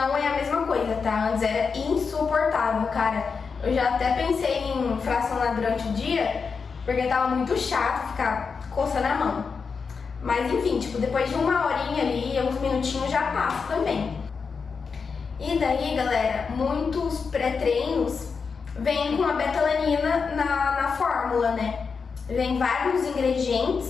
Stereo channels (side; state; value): right; quieter; 5.4 dB